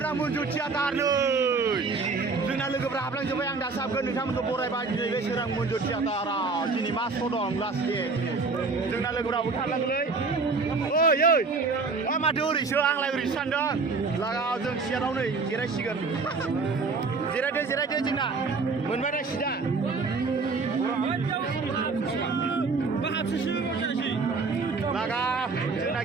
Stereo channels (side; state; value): left; quieter; 4.2 dB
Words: मन्जु थियाटार नै जोंना लोगोफ्रा हाबलांजोब्बाय आं दासो हाबगोन नोंथांमोनखौ बरायबाय दिनै बे सोरां मन्जु थियाटाराव दिनै मा श' दं लास्ट दे जोंना लोगोफ्राबो थांनांगोनलै ओइ माथो ओरैसो आंलाय ओरैसो सानदों लागाव जों सियाराव नै जिरायसिगोन जिरायदो जोंना मोनबाय दा सिदा लागा जोंना